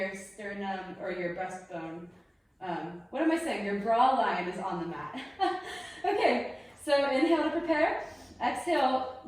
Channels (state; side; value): identical; both; correlation 1.00